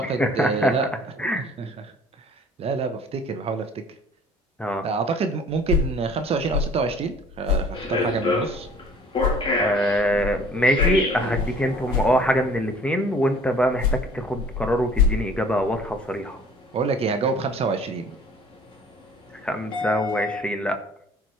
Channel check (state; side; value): normal; both; correlation 0.51